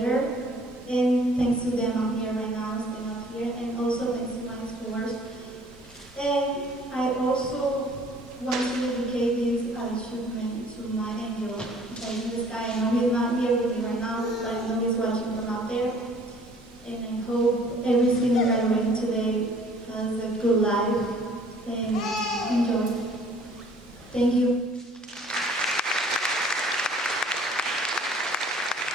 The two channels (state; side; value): normal; both; correlation 0.55